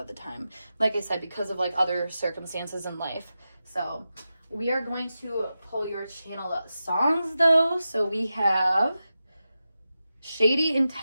the time. Like I said, because of like other circumstances in life. So we are going to pull your channel songs though. So we have Shady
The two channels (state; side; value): inverted; both; correlation -0.92